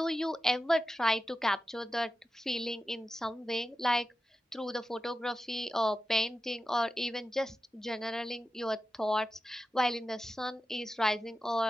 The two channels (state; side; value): normal; both; correlation 0.92